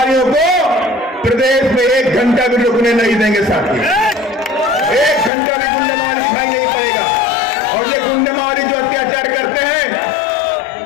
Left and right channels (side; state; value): right; drops out; at 5.3 s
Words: को प्रदेश में 1 घंटा भी रुकने नहीं देंगे। साथी 1 घंटा भी गुंडा मवाली दिखाई नहीं पड़ेगा। और ये गुंडा मवाली जो अत्याचार करते हैं,